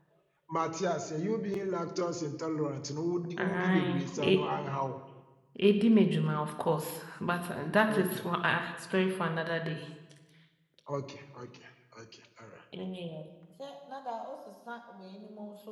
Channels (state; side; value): identical; both; correlation 1.00